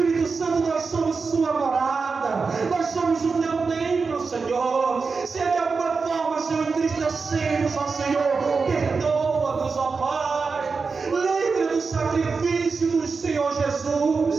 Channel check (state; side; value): quieter; left; 4.7 dB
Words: Santo, nós somos sua morada. Nós somos o teu templo, Senhor. Se de alguma forma, Senhor, entristecemos, ó Senhor, perdoa-nos, ó Pai. Lembra do sacrifício do Senhor